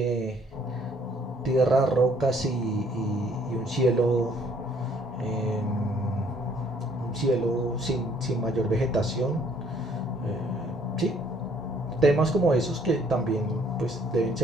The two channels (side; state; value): both; normal; correlation 0.62